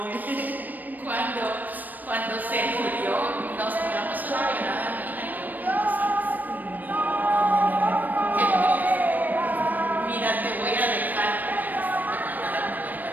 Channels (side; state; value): left; late; 0.086 ms